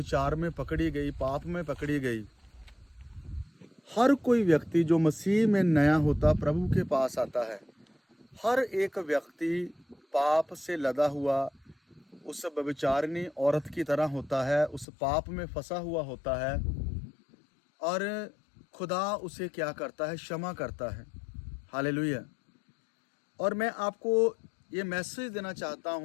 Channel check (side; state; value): right; drops out; at 14.9 s